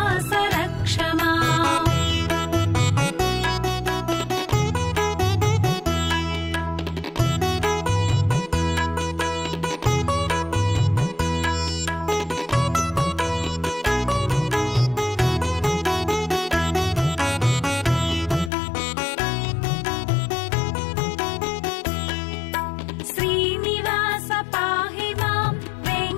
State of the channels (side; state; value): right; drops out; at 18.5 s